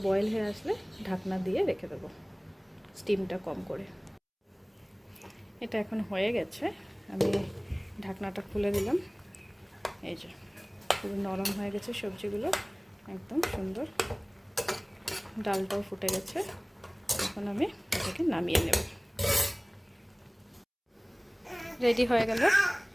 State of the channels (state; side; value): identical; both; correlation 1.00